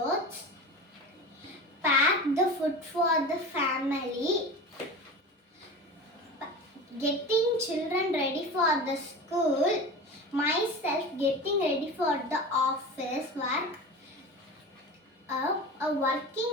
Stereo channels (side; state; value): both; normal; correlation 0.31